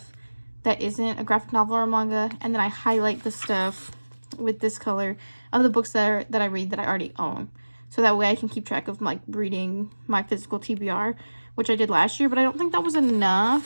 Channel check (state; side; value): inverted; both; correlation -1.00